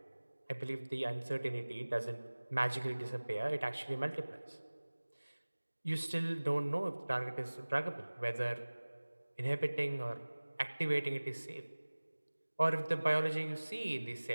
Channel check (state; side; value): inverted; both; correlation -1.00